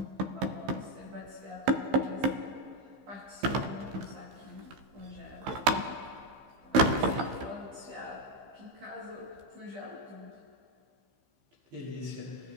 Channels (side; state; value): left; late; 15 ms